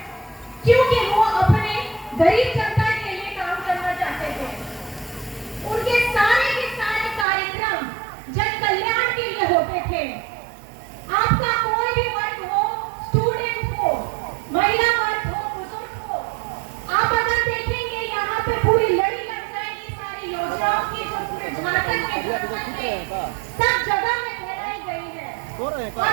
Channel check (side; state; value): left; drops out; at 7.2 s